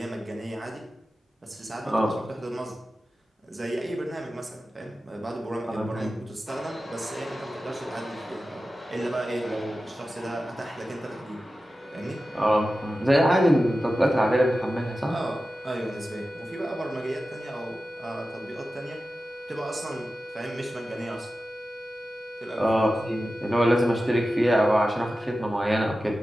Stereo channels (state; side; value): normal; both; correlation 0.94